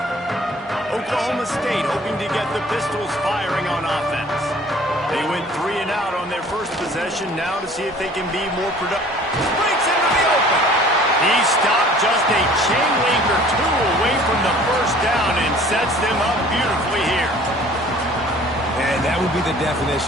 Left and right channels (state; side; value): normal; both; correlation 0.51